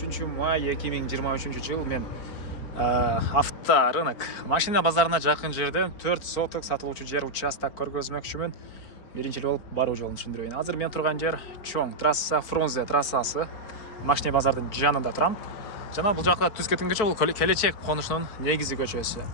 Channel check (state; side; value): late; right; 4.6 ms